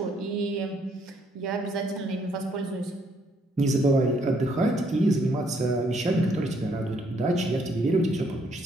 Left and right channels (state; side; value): normal; both; correlation 0.69